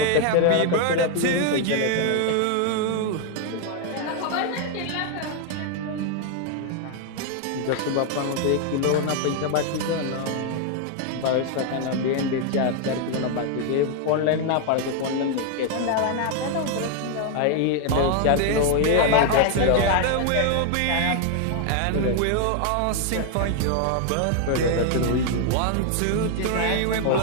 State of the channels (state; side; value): different; both; correlation 0.00